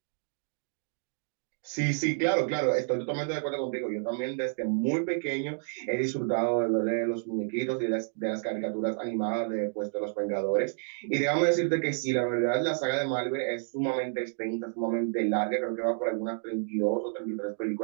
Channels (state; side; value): silent; left; digital silence